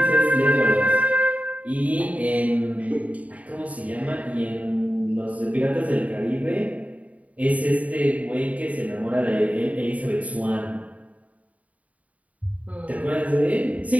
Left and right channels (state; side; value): late; left; 0.069 ms